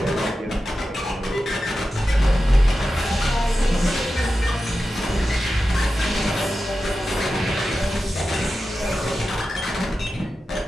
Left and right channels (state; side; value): normal; both; correlation 0.92